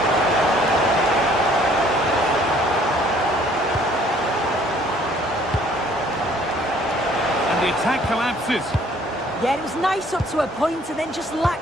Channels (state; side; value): normal; both; correlation 0.59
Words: And the attack collapses. Yeah, it was nice up to a point and then just